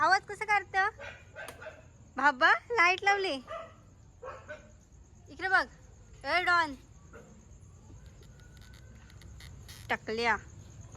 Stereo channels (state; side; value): identical; both; correlation 1.00